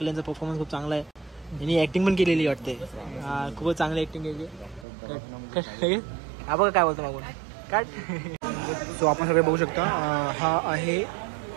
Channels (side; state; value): left; drops out; at 4.9 s